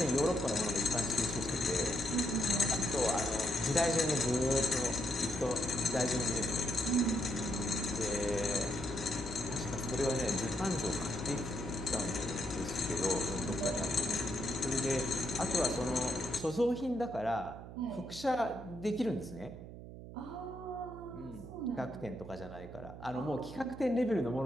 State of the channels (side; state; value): right; noise; hum, 13 dB below the sound